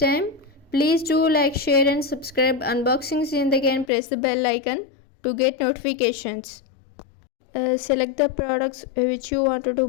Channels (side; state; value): right; drops out; at 3.9 s